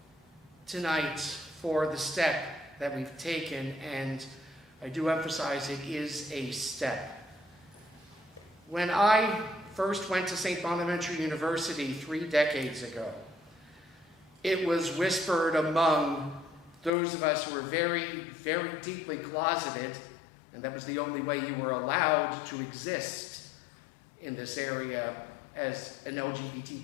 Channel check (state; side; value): drops out; right; at 16.9 s